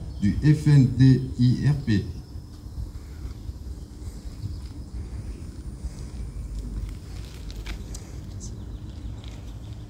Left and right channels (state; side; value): identical; both; correlation 1.00